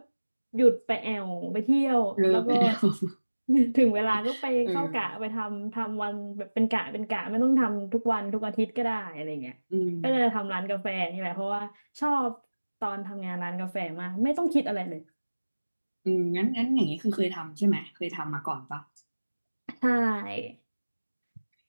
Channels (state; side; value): inverted; both; correlation -1.00